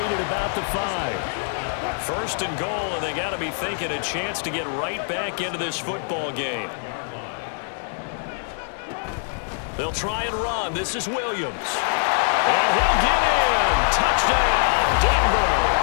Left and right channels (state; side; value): silent; right; digital silence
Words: at about the 5. First and goal, and they got to be thinking a chance to get right back into this football game. They'll try and run. This is Williams. And he'll get in. Touchdown, Denver.